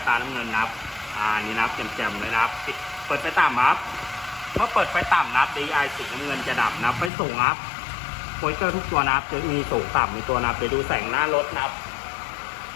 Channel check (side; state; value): right; drops out; at 7.1 s